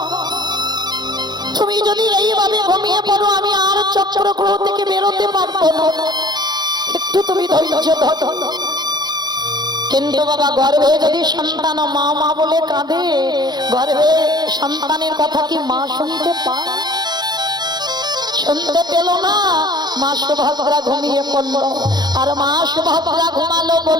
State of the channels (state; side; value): late; left; 0.20 ms